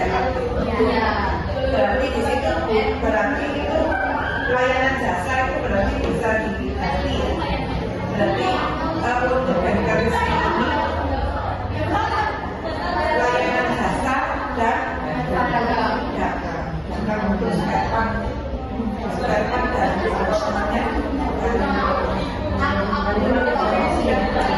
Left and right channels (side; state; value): both; identical; correlation 1.00